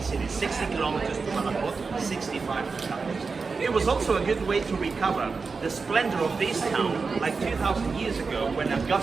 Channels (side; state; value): left; quieter; 4.7 dB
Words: cities, 60 kilometers to Badajoz, 65 to Cáceres. It was also a good way to recover the splendor of this town, like 2,000 years ago when